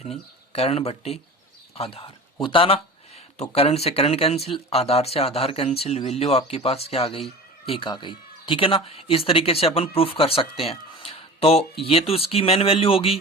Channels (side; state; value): both; normal; correlation 0.35